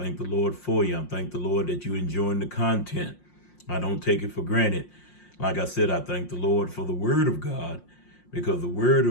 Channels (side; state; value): right; late; 5.6 ms